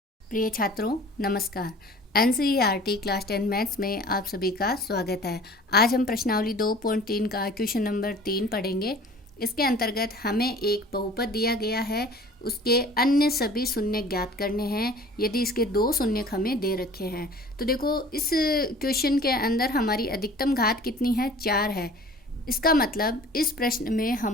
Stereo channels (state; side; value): normal; both; correlation 0.46